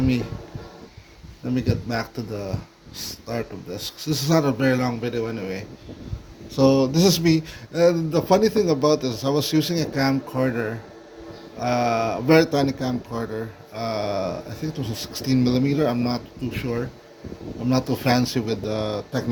me get back to the start of this. 'Cause this is not a very long video anyway. So this is me. And the funny thing about this, I was using a camcorder, a very tiny camcorder. I think it was a 16 millimeter. I'm not too sure. I'm not too fancy with the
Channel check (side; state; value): both; identical; correlation 1.00